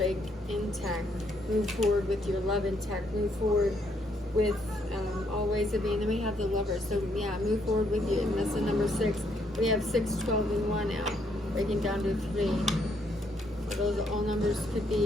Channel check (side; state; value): both; normal; correlation 0.72